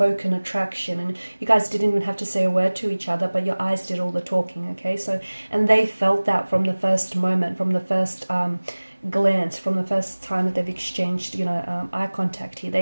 attraction, and you guys didn't even have to say a word to each other, but your eyes did all the talking, okay? So, and they felt that from the first moment, from the first glance, from the first time that they've exchanged, eye contact here.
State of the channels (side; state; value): both; inverted; correlation -1.00